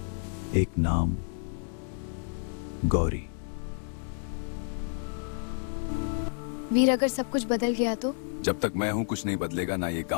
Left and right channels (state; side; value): silent; right; 58 dB below the other